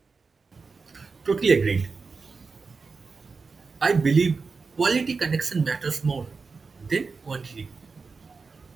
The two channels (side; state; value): left; quieter; 4.6 dB